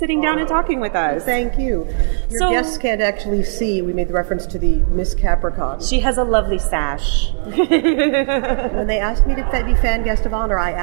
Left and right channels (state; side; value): silent; left; digital silence